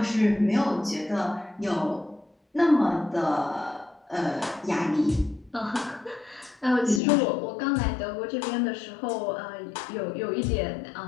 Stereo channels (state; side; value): drops out; right; at 7.0 s